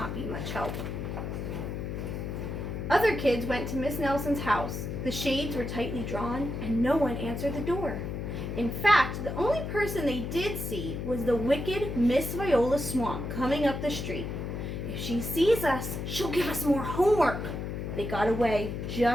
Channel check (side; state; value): left; noise; hum, 4 dB below the sound